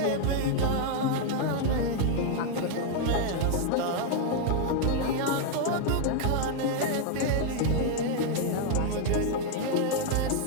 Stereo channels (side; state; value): both; different; correlation 0.00